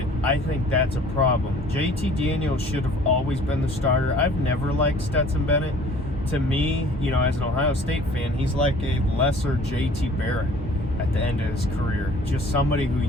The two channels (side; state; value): both; normal; correlation 0.51